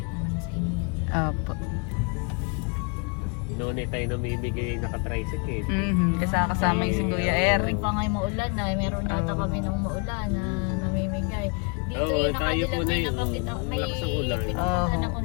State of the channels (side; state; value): right; quieter; 35.2 dB